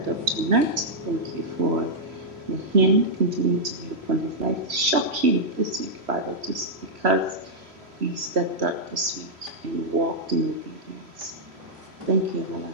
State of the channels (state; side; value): late; left; 3.1 ms